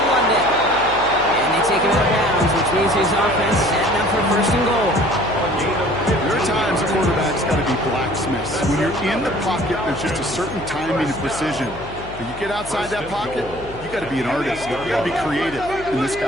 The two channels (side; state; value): left; noise; hum, 15 dB below the sound